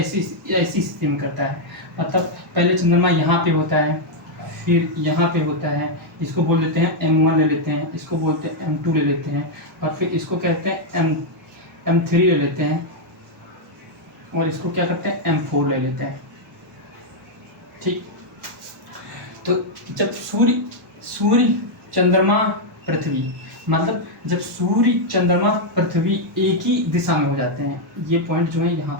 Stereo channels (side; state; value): both; normal; correlation -0.02